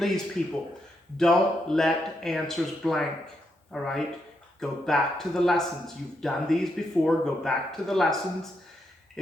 people, don't let answers blank, all right? Go back to the lessons. You've done these before. Go back to the lessons.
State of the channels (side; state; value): both; normal; correlation 0.81